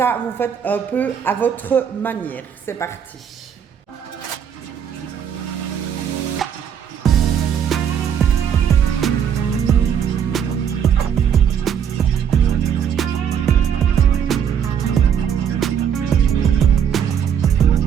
vous faites un peu à votre manière. C'est parti.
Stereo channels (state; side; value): quieter; left; 8.2 dB